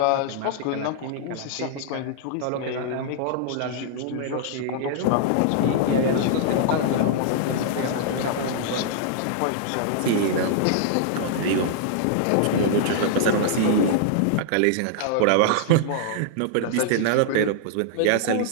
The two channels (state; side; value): different; both; correlation -0.01